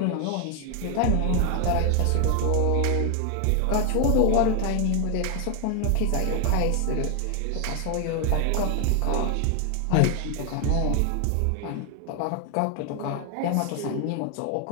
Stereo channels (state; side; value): different; both; correlation 0.01